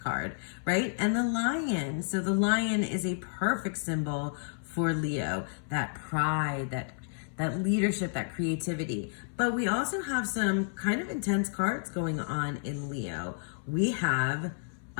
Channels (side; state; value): right; silent; 57 dB below the other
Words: right? And the lion. So the lion is a perfect symbol for Leo, that pride, that leadership, that creativity. But we also have some kind of intense cards going on in Leo. We have